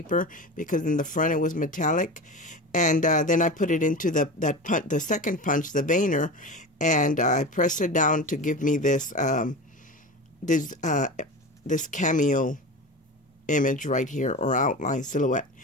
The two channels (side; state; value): both; normal; correlation 0.28